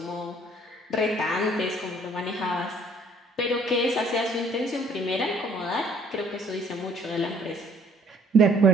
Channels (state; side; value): normal; both; correlation 0.59